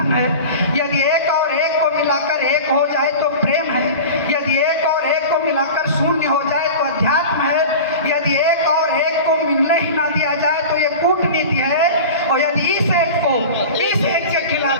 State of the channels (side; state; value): both; inverted; correlation -0.33